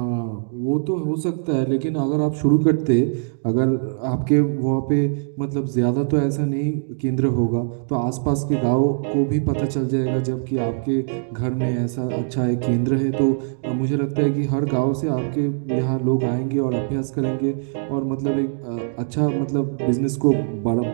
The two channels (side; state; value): left; silent; digital silence